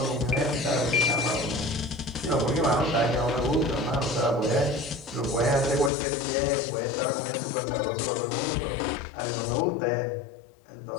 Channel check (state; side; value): drops out; right; at 5.9 s